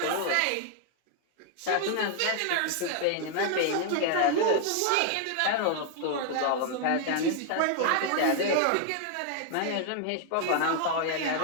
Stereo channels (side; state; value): both; different; correlation 0.00